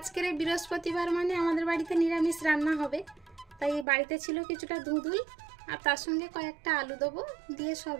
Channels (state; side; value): drops out; left; at 3.9 s